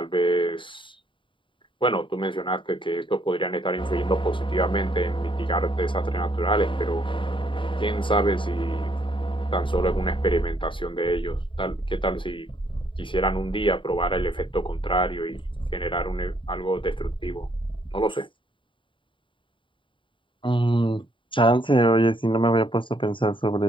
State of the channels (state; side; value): late; right; 0.24 ms